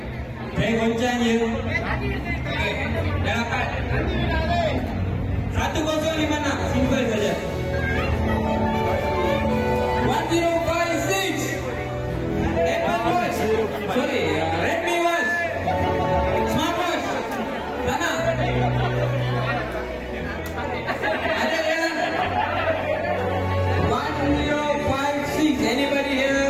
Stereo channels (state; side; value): identical; both; correlation 1.00